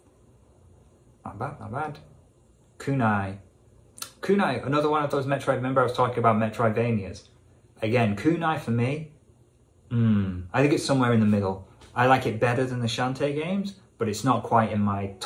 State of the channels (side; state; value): both; identical; correlation 1.00